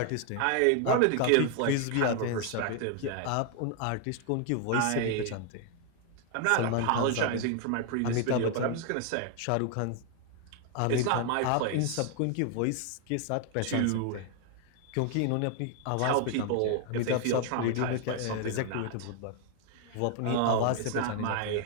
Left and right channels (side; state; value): both; different; correlation 0.00